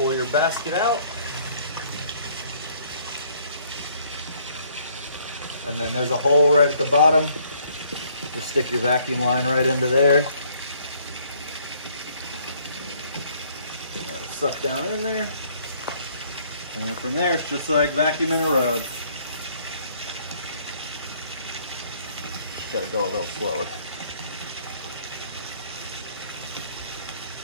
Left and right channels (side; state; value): both; inverted; correlation -0.63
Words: your basket out. And then there's a hole right at the bottom. Just stick your vacuum line right into there. That'll suck down in there. And then from there, it's just like vacuuming a rug. Just gotta go a little slower.